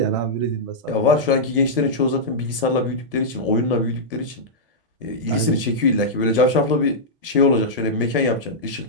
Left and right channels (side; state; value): both; normal; correlation -0.09